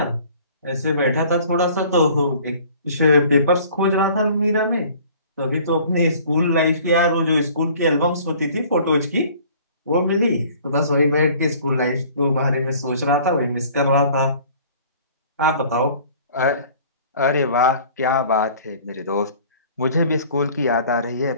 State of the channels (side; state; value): both; inverted; correlation -0.51